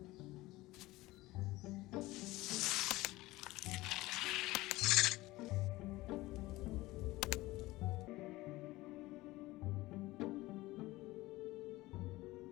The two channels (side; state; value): right; quieter; 19.0 dB